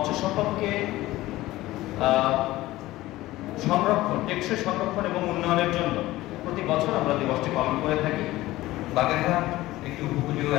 সম্পদকে সংরক্ষণ, টেকসই সংরক্ষণ এবং উন্নয়নের জন্য প্রতি বছর আমরা দিবসটি পালন করে থাকি। বাগেরহাট একটি উপকূলীয়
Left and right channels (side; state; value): right; quieter; 17.3 dB